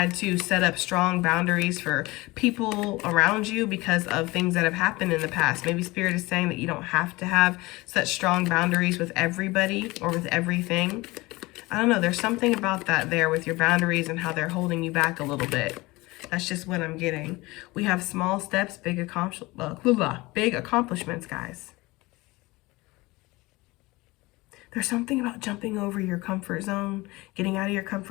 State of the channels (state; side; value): quieter; right; 21.7 dB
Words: to set up strong boundaries for people around you because of things that have happened in the past. Maybe Spirit is saying that you don't have to have such strong boundaries with everybody or with everything. I don't know. There's something about that there with your boundaries and how they're holding you back a little bit. That's just what I'm getting. We have small steps, big accomplishments, guys. There's something about jumping over your comfort zone, getting out of your